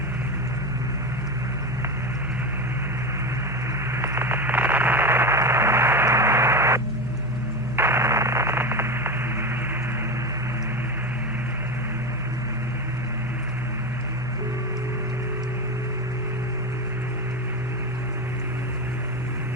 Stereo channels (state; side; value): normal; both; correlation 0.19